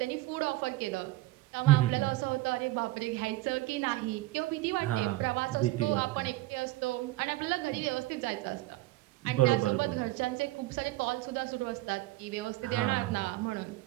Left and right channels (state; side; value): quieter; left; 18.3 dB